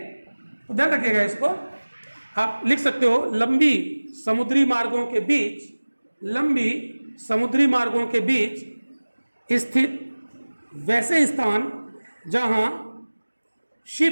तो ध्यान रखिएगा इसको। आप लिख सकते हो लंबी समुद्री मार्गों के बीच, लंबी समुद्री मार्गों के बीच स्थित वैसे स्थान जहां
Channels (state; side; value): inverted; both; correlation -1.00